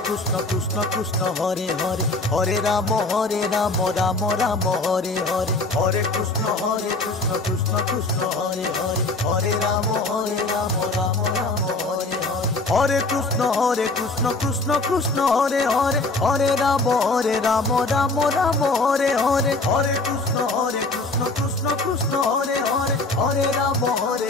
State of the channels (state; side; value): quieter; right; 3.2 dB